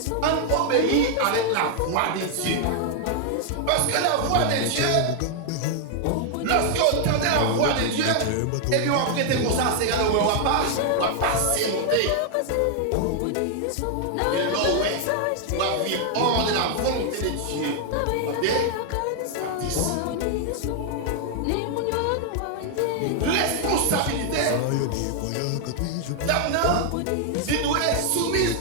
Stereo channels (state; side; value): different; both; correlation 0.00